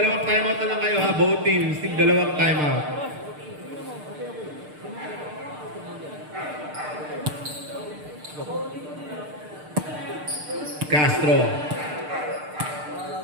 timeout na lang kayo ha. Both teams, need dalawang timeout. Castro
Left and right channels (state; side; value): late; left; 6.6 ms